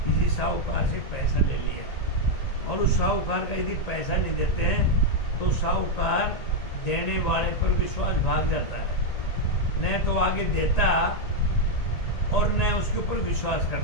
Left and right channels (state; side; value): late; right; 1.8 ms